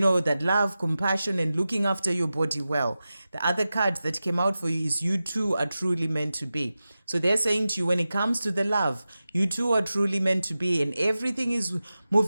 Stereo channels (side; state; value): both; inverted; correlation -0.94